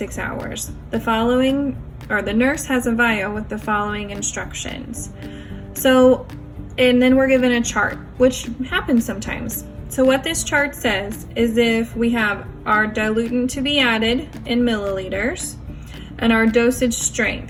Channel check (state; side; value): identical; both; correlation 1.00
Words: hours. The nurse has a vial with the following instructions. And then we're given a chart, which happens sometimes. So what this chart says is if we have our diluent to be added in milliliters and our dosage